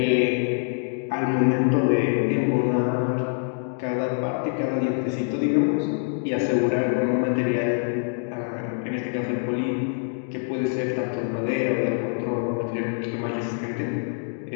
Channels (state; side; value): silent; right; 62 dB below the other